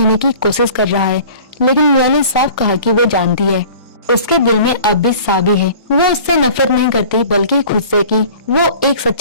की कोशिश कर रहा है, लेकिन मियाँ ने साफ कहा कि वो जानती है उसके दिल में अब भी साबी है। वो उससे नफरत नहीं करती, बल्कि खुद से कि वो एक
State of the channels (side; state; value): both; inverted; correlation -0.46